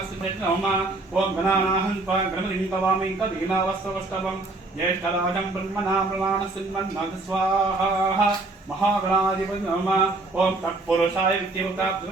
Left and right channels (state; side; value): quieter; left; 3.2 dB